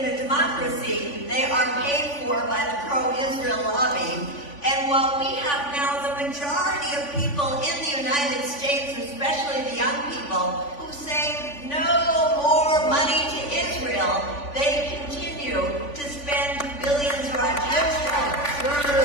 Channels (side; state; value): right; late; 3.5 ms